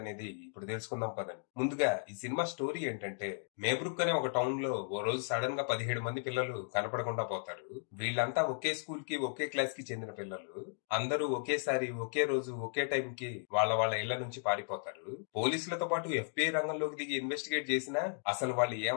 ఇప్పుడు తెలుసుకుందాం పదండి. ముందుగా ఈ సినిమా స్టోరీ ఏంటంటే, మేబ్రుక్ అనే ఒక టౌన్ లో ఓ రోజు సడన్ గా 17 మంది పిల్లలు కనపడకుండా పోతారు. వీళ్ళంతా ఒకే స్కూల్ కి ఒకే క్లాస్ కి చెందిన పిల్లలు. అందరూ ఒకేసారి ఒకే రోజు ఒకే టైం కి వాళ్ళ వాళ్ళ ఇళ్ల నుంచి పారిపోతారు. పోలీసులతో పాటు FBI రంగంలోకి దిగి ఇన్వెస్టిగేట్ చేసినా అసలు వాళ్ళు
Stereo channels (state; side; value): silent; right; digital silence